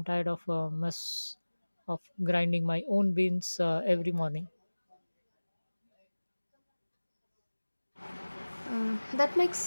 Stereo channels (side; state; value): both; inverted; correlation -1.00